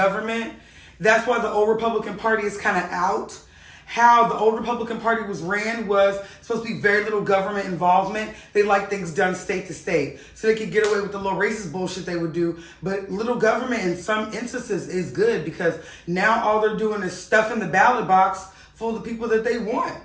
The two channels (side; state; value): both; identical; correlation 1.00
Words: That's why the old Republican Party is kind of out. How the old Republican Party was ran was supposed to be very little government involvement. They like things done state to state. So they could get away with the little racist bullshit they would do. But little government in some instances is good because now all they're doing is stuffing the ballot box full of the people that they want.